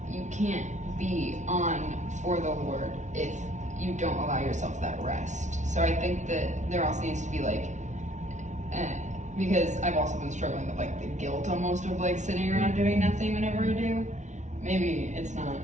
you can't be on for the Lord if you don't allow yourself that rest. So I think that there also needs to be like, because I've also been struggling with like the guilt almost of like sitting around doing nothing whenever I do. Maybe it's not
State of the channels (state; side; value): late; left; 0.35 ms